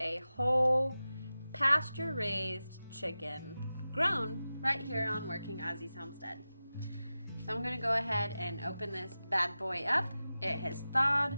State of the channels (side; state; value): both; inverted; correlation -0.94